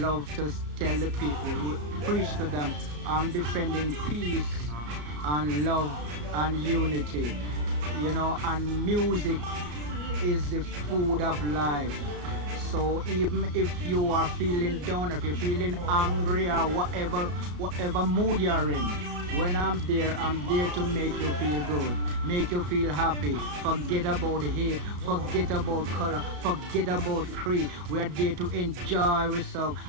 to tell the people, preach to them, I'm defending peace and love and unity, you know, and music is the food of life. So even if you are feeling down, if you're feeling angry or whatever mood you're in, when I'm there to make you feel good, make you feel happy. Forget about hate, forget about color, forget about creed. We are there to enjoy ourselves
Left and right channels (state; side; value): late; left; 34 ms